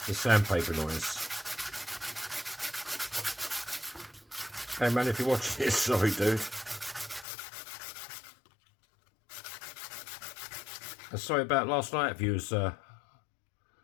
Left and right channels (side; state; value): right; drops out; at 7.2 s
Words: the sandpaper noise. Hey man, if you're watching this, sorry dude. And sorry about last night if you was one